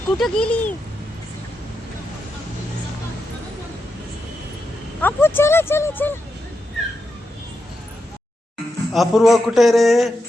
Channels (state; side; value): normal; both; correlation 0.86